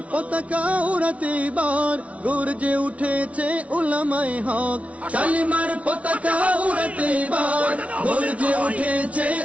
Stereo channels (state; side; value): late; left; 0.065 ms